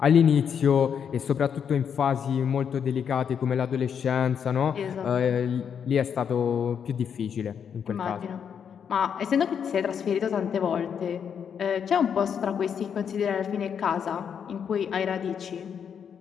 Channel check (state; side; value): quieter; right; 7.6 dB